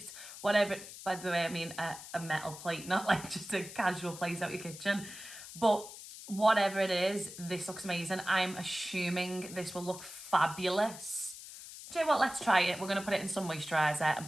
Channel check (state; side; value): noise; left; hiss, 13 dB below the sound